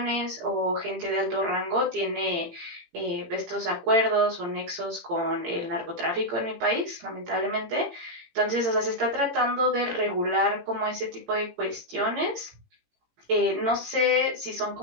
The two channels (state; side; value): late; left; 18 ms